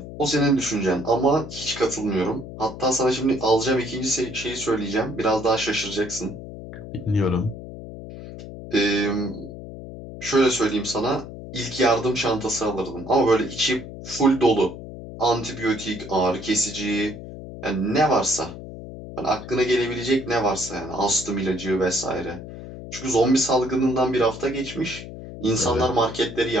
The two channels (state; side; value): noise; left; hum, 12 dB below the sound